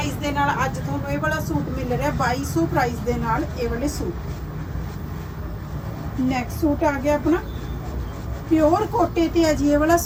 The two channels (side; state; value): both; identical; correlation 1.00